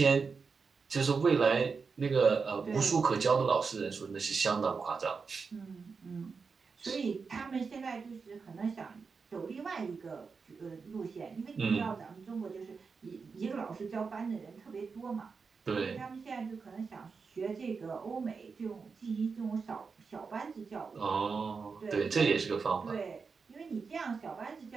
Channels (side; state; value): left; quieter; 5.1 dB